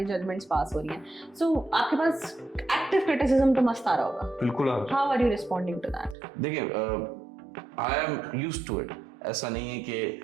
जजमेंट्स पास हो रही हैं। सो आपके पास एक्टिव क्रिटिसिज्म तो मस्त आ रहा होगा। बिल्कुल। How are you responding to that? देखिए, I am used to it. ऐसा नहीं है कि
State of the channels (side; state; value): left; drops out; at 6.2 s